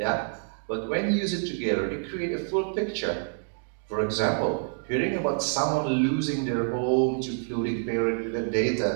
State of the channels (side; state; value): left; silent; digital silence